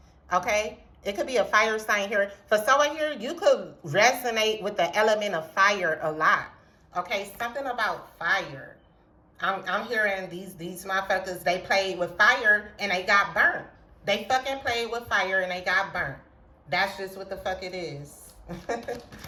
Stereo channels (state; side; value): identical; both; correlation 1.00